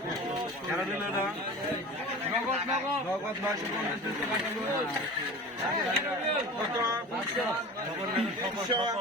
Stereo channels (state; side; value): normal; both; correlation 0.35